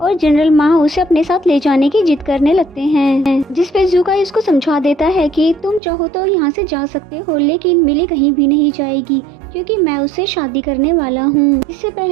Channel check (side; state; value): left; drops out; at 5.8 s